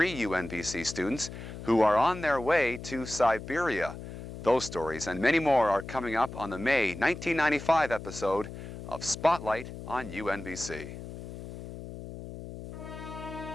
UNBC students who are on their way to Siberia. Those stories and many more are coming up on the May 1995 episode of Spotlight on UNBC.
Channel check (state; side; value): noise; left; hum, 11 dB below the sound